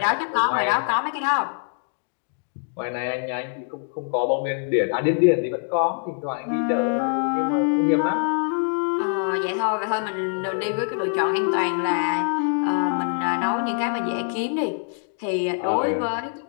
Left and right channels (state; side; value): silent; right; digital silence